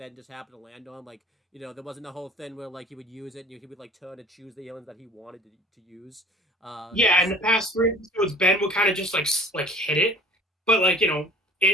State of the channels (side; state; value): both; normal; correlation 0.47